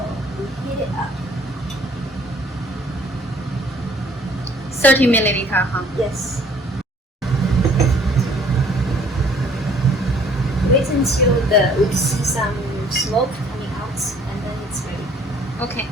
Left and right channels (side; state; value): both; normal; correlation 0.57